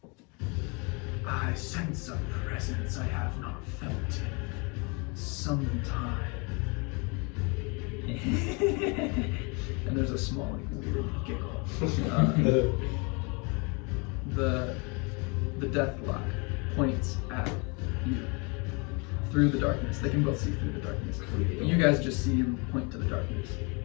I sense a presence I have not felt in some time. And there's a small like weird giggle. The deathlock points at you through the darkness. They can both see through the darkness. You guys just see him point to the darkness.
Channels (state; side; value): quieter; right; 31.6 dB